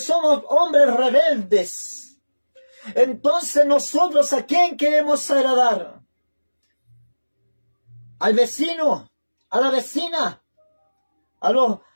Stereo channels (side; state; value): both; inverted; correlation -1.00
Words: hombres rebeldes. Entonces nosotros, ¿a quién queremos agradar? ¿Al vecino? ¿A la vecina? ¿A los